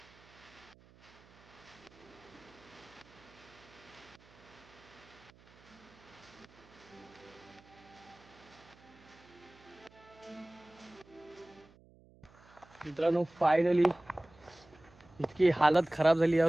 मित्रांनो फायनली इतकी हालत खराब झाली. या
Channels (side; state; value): right; noise; hum, 25 dB below the sound